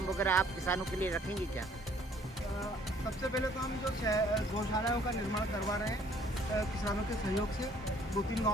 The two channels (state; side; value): normal; both; correlation 0.59